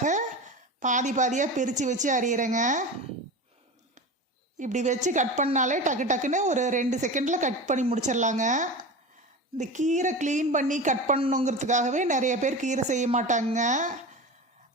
பாதியாக பிரித்து வச்சு அரியிறேங்க. இப்படி வச்சு கட் பண்ணாலே டக்குன்னு ஒரு 2 செகண்டில் கட் பண்ணி முடிச்சிடலாங்க. இந்த கீரை க்ளீன் பண்ணி கட் பண்ணணுங்கிறதுக்காகவே நிறைய பேர் கீரை செய்ய மாட்டாங்க.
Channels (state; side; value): normal; both; correlation 0.29